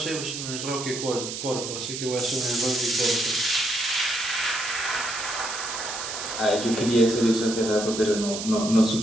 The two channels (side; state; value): right; noise; hiss, 6 dB below the sound